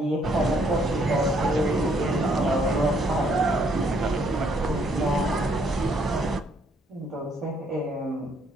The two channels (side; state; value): both; normal; correlation 0.68